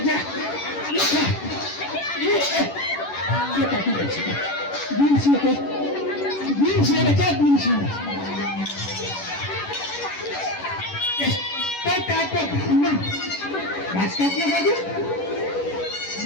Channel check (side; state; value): right; late; 10 ms